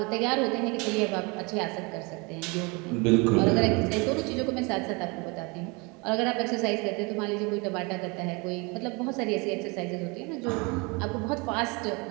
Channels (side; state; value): left; quieter; 28.6 dB